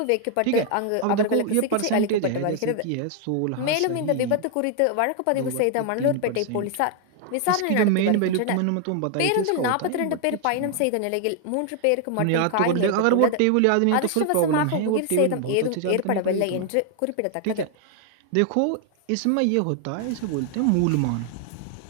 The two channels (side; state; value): both; different; correlation 0.00